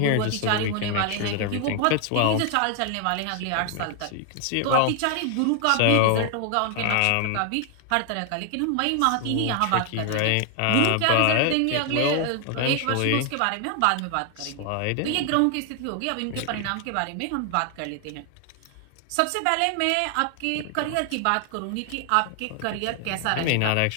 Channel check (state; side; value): different; both; correlation 0.00